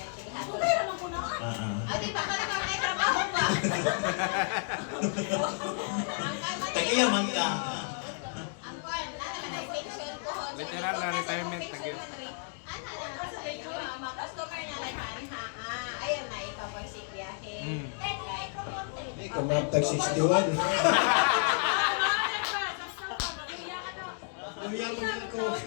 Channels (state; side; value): silent; right; 57 dB below the other